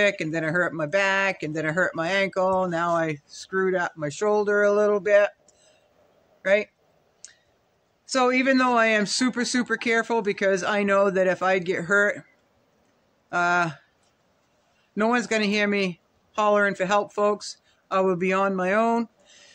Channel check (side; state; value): both; identical; correlation 1.00